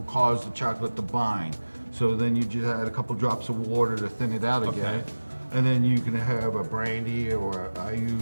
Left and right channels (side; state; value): both; inverted; correlation -1.00